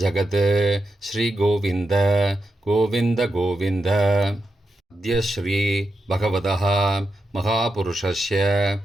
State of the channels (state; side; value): normal; both; correlation 0.87